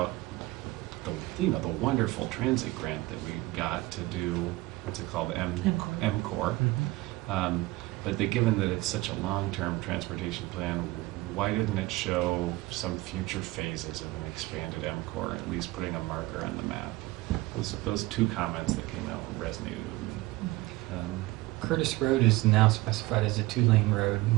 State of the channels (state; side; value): quieter; left; 20.0 dB